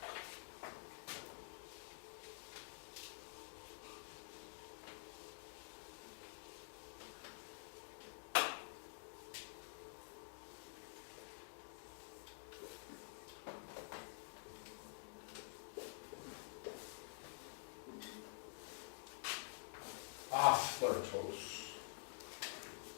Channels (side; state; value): right; silent; digital silence